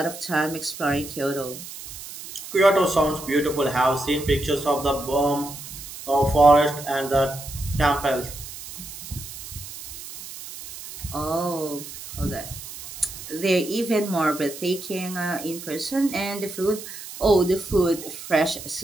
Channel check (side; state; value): right; noise; hiss, 12 dB below the sound